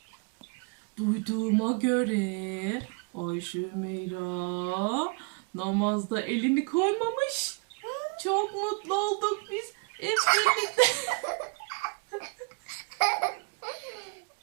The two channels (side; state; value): left; quieter; 33.9 dB